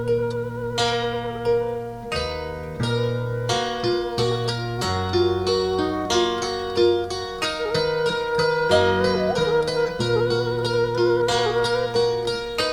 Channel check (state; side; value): identical; both; correlation 1.00